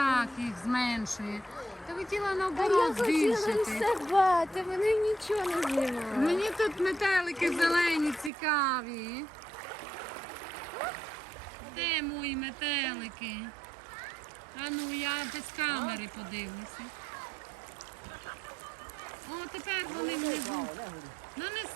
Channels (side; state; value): left; drops out; at 8.3 s